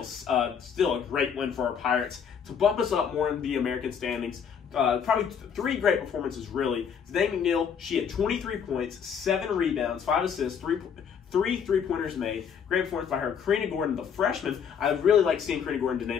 a great win for our Pirates to bump us up more in the American standings. Probably 3 great performances, really. Danae McNeil, she had 23 points, 7 rebounds, 5 assists, 3 3-pointers made. Great performance by her. Karina Gordon, the freshman. I really like seeing Karina Gordon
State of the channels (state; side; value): quieter; right; 7.3 dB